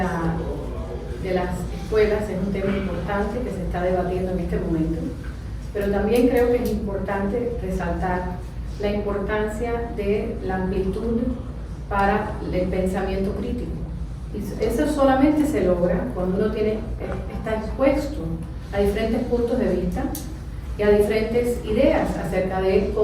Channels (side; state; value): both; identical; correlation 1.00